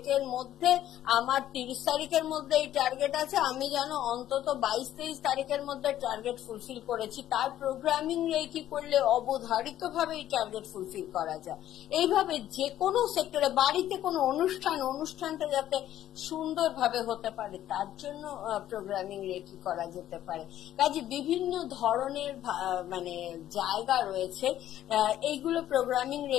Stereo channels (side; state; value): right; quieter; 12.3 dB